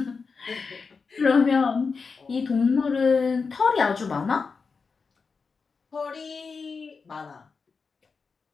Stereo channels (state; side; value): quieter; right; 4.9 dB